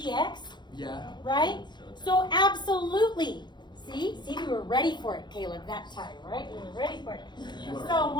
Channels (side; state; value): right; late; 0.21 ms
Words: Yeah. right? So absolutely. See, we were ready for it, Caleb, that time, right? We were ready for it. So